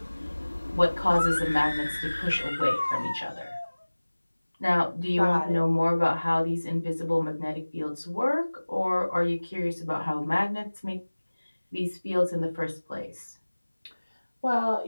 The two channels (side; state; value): both; inverted; correlation -1.00